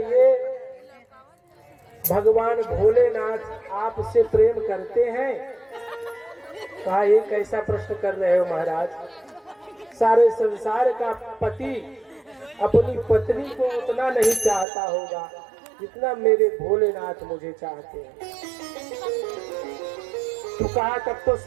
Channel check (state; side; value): drops out; left; at 14.7 s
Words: भगवान भोलेनाथ आपसे प्रेम करते हैं? कहा ये कैसा प्रश्न कर रहे हो महाराज, सारे संसार का पति अपनी पत्नी को उतना नहीं चाहता होगा जितना मेरे भोलेनाथ मुझे चाहते हैं। तो कहा तब तो